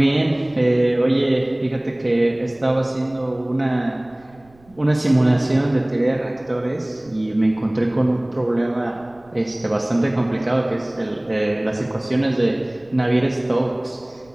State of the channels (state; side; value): noise; right; rumble, 29 dB below the sound